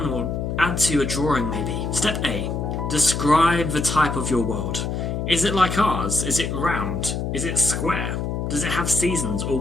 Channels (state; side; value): noise; left; hum, 2 dB below the sound